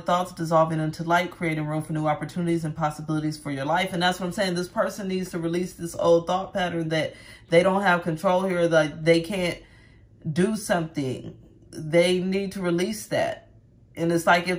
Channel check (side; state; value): both; identical; correlation 1.00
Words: thoughts dissolving into light, creating room for new opportunities and possibilities for your life. And that's what I'm saying. This person needs to release this old thought pattern that they don't have control here, that they can't do something. They need to release that. And it's like